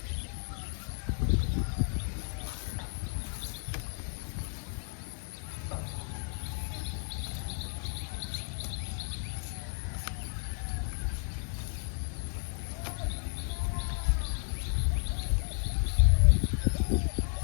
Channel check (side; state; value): right; silent; 56 dB below the other